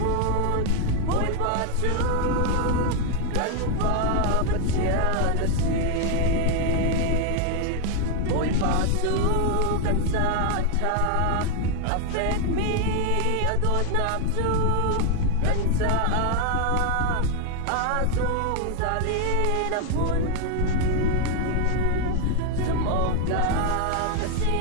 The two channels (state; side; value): different; both; correlation 0.01